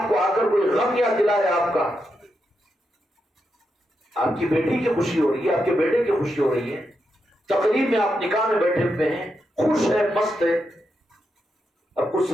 کو آ کر کوئی غم یاد دلائے آپ کا، آپ کی بیٹی کی خوشی ہو رہی ہے، آپ کے بیٹے کی خوشی ہو رہی ہے، تقریب میں آپ نکاح میں بیٹھے ہوئے ہیں، خوش ہے، مست ہے، اب اس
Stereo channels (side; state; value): both; normal; correlation 0.84